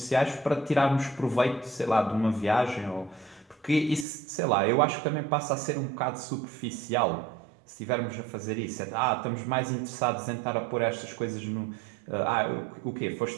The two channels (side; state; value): left; drops out; at 4.0 s